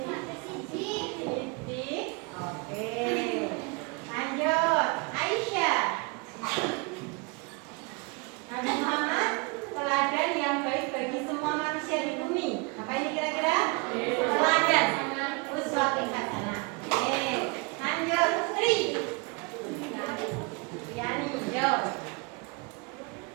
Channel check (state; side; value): quieter; left; 29.9 dB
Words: Sidik. Oke. Lanjut. Aisyah. Nabi Muhammad teladan yang baik bagi semua manusia di bumi. Apa ini kira-kira? Teladan. Uswatun hasanah. Oke. Lanjut. Sri. Yani. Yo.